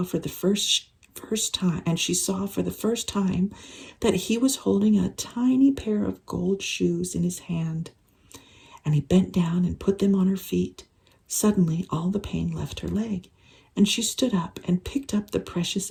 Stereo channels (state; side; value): identical; both; correlation 1.00